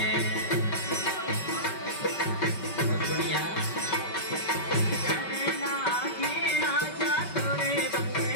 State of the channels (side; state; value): right; late; 5.2 ms